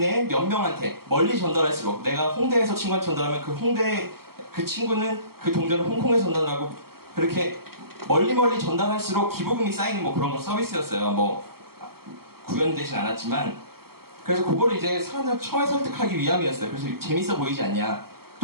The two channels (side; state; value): left; late; 0.94 ms